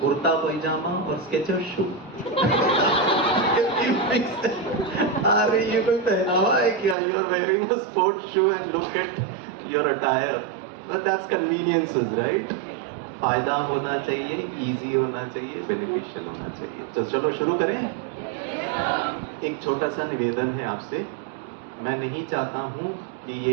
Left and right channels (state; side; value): drops out; left; at 7.0 s